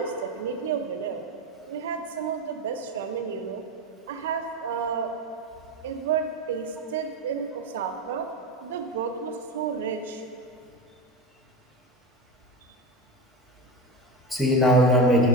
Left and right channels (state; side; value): normal; both; correlation 0.20